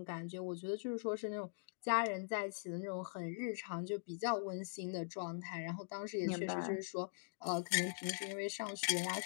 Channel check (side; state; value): right; silent; digital silence